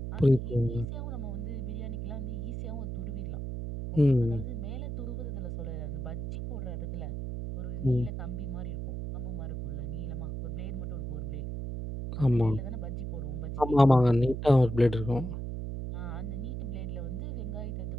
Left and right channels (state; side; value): noise; right; hum, 4 dB below the sound